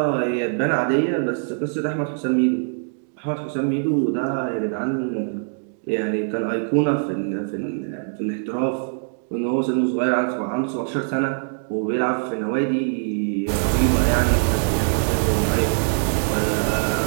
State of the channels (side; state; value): left; silent; digital silence